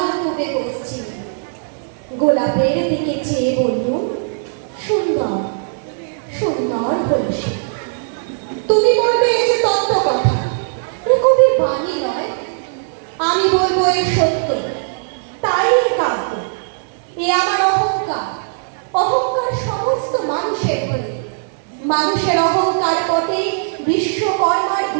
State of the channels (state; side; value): silent; left; digital silence